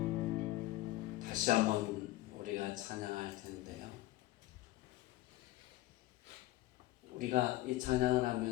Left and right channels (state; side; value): quieter; right; 17.0 dB